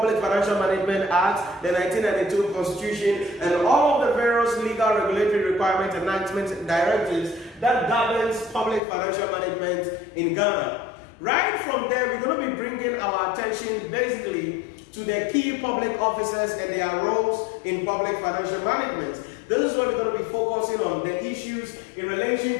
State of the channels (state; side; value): drops out; right; at 8.8 s